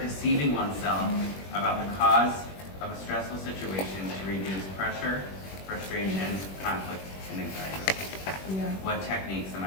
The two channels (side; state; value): right; late; 21 ms